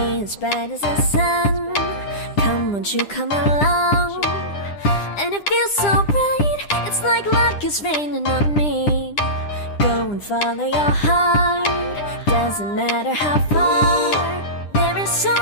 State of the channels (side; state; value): right; late; 9.9 ms